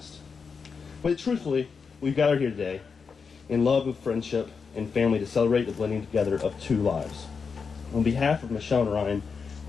But truthfully, we've gathered here today in love of friendship and family to celebrate the blending together of two lives. On behalf of Michelle and Ryan,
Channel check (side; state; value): right; quieter; 5.5 dB